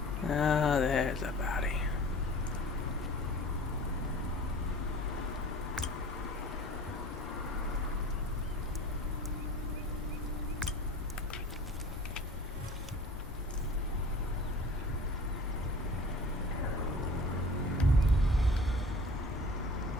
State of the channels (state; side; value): normal; both; correlation 0.43